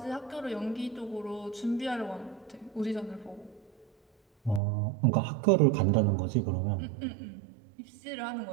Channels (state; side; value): drops out; left; at 4.6 s